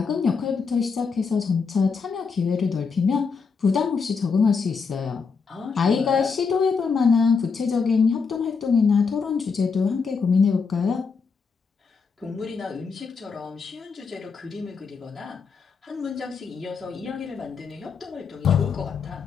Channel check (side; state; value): right; quieter; 5.3 dB